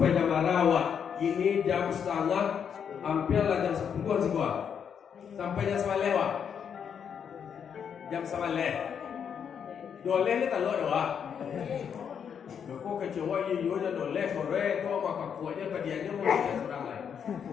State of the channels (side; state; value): right; quieter; 7.6 dB